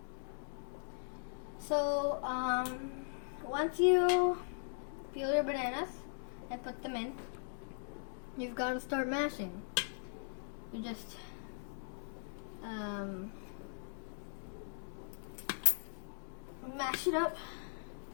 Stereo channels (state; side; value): silent; right; digital silence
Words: So once you peel your bananas and put them in, you've got to start mashing. You just mash it up.